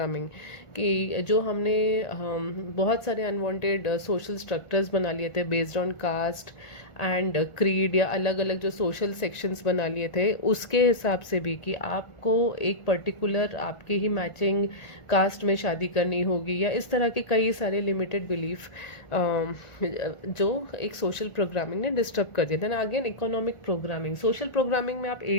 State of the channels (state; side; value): late; right; 1.5 ms